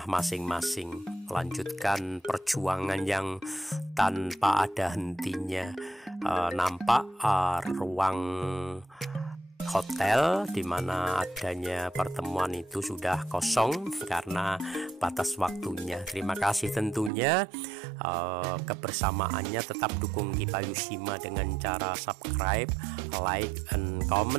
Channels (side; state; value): left; drops out; at 17.1 s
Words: masing-masing, melanjutkan perjuangan yang tanpa ada hentinya. Nampak ruang hotel di mana adanya pertemuan itu sudah kosong karena batas waktunya. Terima kasih tentunya kebersamaannya. Tetap dukung Kipayushima dengan cara subscribe, like, and